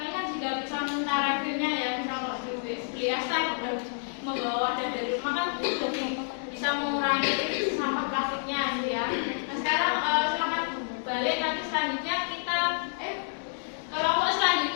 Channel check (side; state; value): right; silent; digital silence